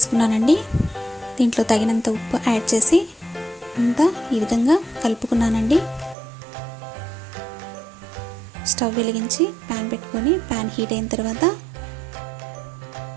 దీంట్లో తగినంత ఉప్పు యాడ్ చేసి అంతా ఈ విధంగా కలుపుకున్నానండి. స్టవ్ వెలిగించి ప్యాన్ పెట్టుకొని ప్యాన్ హీట్ అయిన తర్వాత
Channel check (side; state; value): left; drops out; at 6.2 s